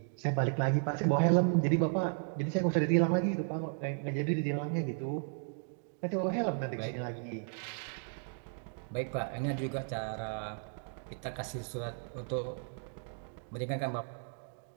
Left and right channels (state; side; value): silent; left; 55 dB below the other